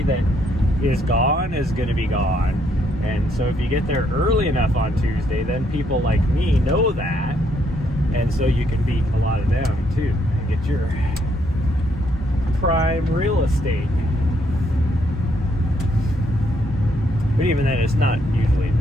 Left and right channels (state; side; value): normal; both; correlation 0.73